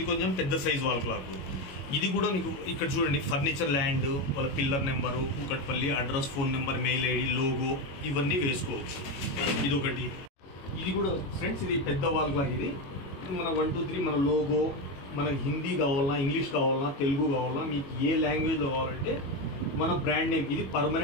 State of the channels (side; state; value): right; late; 22 ms